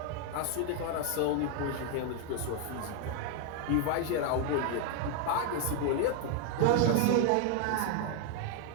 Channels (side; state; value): both; different; correlation 0.00